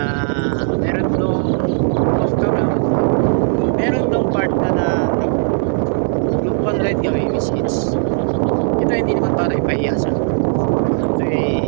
meron nung off camera, meron nung part na nag-bound ride kami, which is ito hindi naman para ipahiya siya. Ito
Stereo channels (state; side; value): silent; left; 67 dB below the other